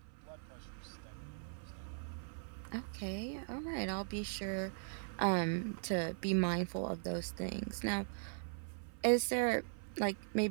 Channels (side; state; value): left; silent; 51 dB below the other